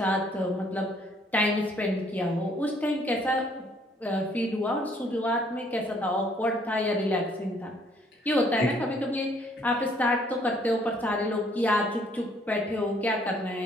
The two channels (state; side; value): normal; both; correlation 0.64